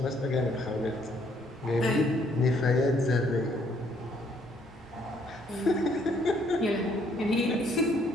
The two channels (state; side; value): normal; both; correlation 0.66